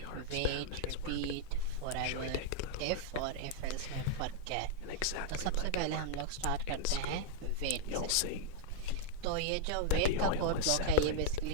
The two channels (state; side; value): different; both; correlation 0.00